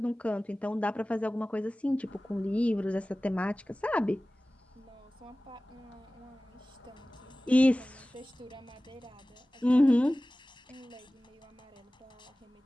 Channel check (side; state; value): both; normal; correlation 0.97